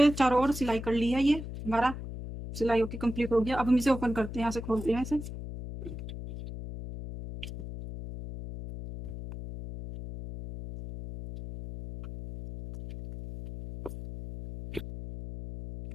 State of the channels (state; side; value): noise; left; hum, 9 dB below the sound